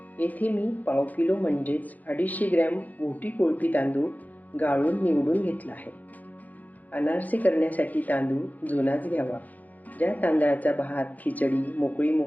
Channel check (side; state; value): right; late; 0.080 ms